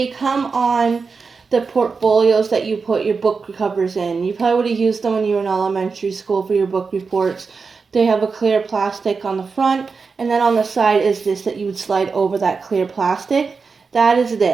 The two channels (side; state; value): left; quieter; 4.9 dB